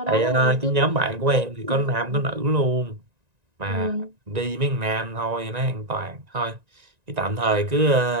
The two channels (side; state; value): left; late; 1.9 ms